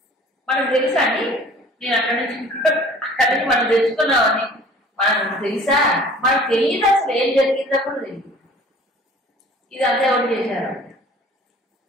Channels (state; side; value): normal; both; correlation 0.49